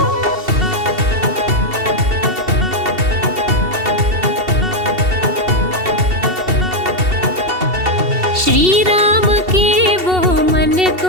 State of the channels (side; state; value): left; late; 2.7 ms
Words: श्री राम के वो मन